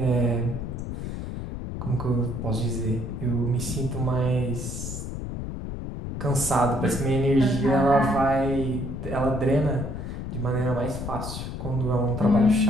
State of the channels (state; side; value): noise; left; rumble, 6 dB below the sound